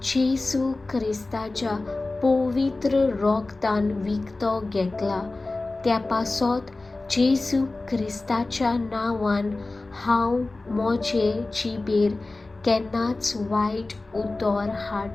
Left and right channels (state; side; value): quieter; right; 3.2 dB